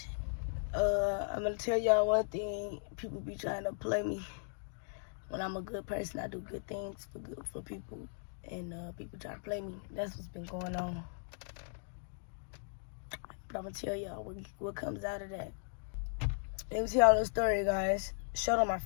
I'm gonna tell y'all one thing. People be trying to play me. When I'm a good person, I do good things for people, and people try to play me. That's what's been going on. But I'm gonna tell y'all what comes out of that. Let me tell y'all the story, guys. Shirt on my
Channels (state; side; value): silent; right; digital silence